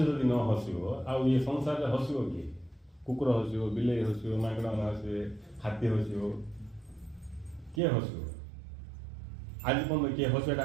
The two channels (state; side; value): drops out; left; at 7.8 s